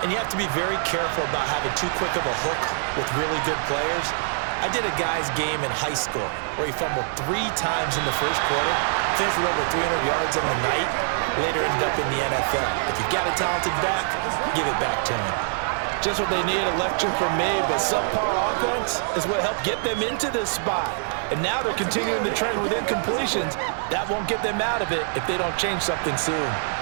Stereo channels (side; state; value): left; silent; 62 dB below the other